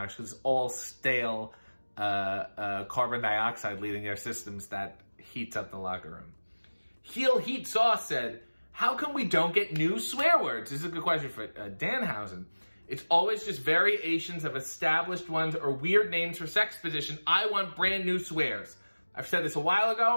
because it's all stale carbon dioxide leaving their systems that heats up the locker room. Heel Heat Sauce said, how come we don't get new swear words? This is a good question for Danhausen. It's always just variations of established ones or weird names for sex position. I want brand new swears. I've said this a while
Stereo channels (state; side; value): inverted; both; correlation -1.00